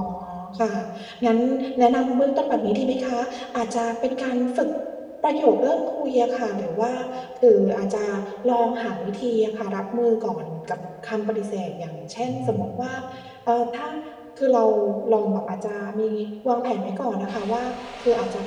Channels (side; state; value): both; identical; correlation 1.00